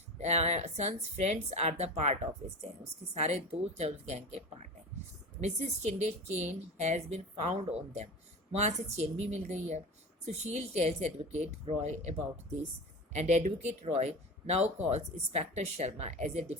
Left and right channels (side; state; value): both; normal; correlation 0.30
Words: son's friends are the part of this gang. उसके सारे दोस्त उस गैंग के पार्ट हैं. Mrs Shinde chain has been found on them. वहाँ से चेन भी मिल गई है. Sushil tells advocate Roy about this and advocate Roy now calls inspector Sharma as a